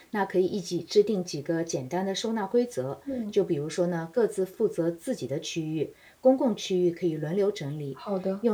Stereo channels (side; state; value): both; identical; correlation 1.00